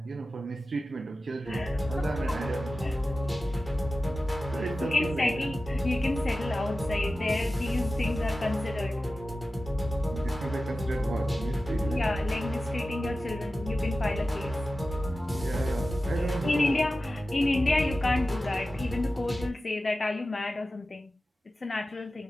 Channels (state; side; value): normal; both; correlation 0.94